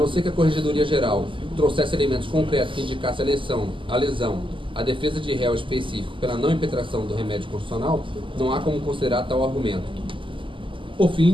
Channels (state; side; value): late; left; 0.25 ms